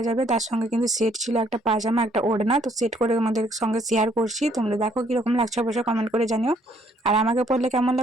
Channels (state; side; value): normal; both; correlation 0.66